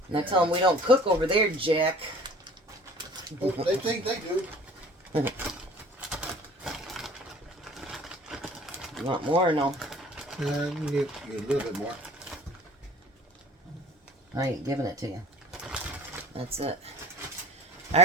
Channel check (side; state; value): both; normal; correlation 0.46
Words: Now tell them we don't cook over there, Jack. Oh, they think they do. You want more or no? You can get a little bit more. I ain't giving it to you. That's it.